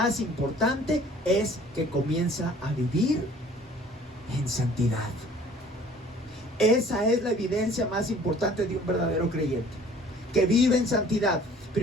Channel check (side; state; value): both; normal; correlation 0.52